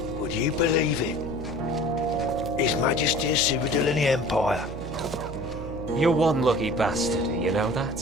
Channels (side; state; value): right; noise; hum, 10 dB below the sound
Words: Would you believe it? His Majesty is Cyrodiil in the Empire. You're one lucky bastard, you know